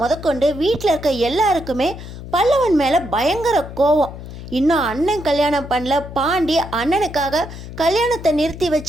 முதற்கொண்டு வீட்டில் இருக்க எல்லாருக்குமே பல்லவன் மேலே பயங்கர கோவம். இன்னும் அண்ணன் கல்யாணம் பண்ணல, பாண்டி அண்ணனுக்காக கல்யாணத்தை நிறுத்தி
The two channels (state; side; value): noise; left; hum, 12 dB below the sound